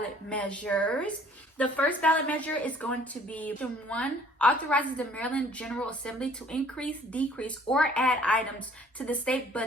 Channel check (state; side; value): normal; both; correlation 0.56